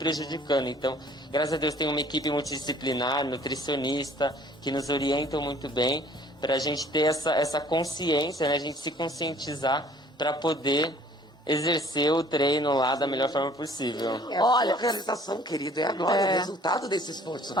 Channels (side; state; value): both; normal; correlation 0.55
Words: Então, graças a Deus tem uma equipe multidisciplinar, nutricionista, que nos orientam muito bem, pra gente ter essa consciência, né? A gente se conscientizar para poder exercer o treino lá da melhor forma possível. Olha, a realização, querido, é agora o resultado desse esforço.